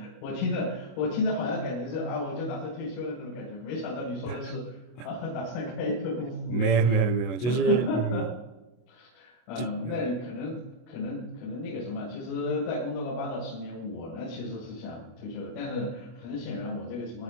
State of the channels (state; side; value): late; right; 24 ms